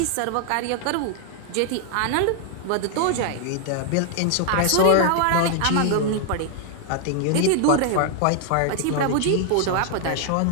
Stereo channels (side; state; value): both; different; correlation 0.00